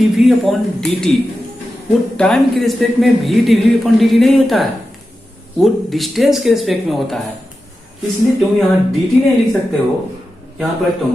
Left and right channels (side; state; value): both; normal; correlation 0.91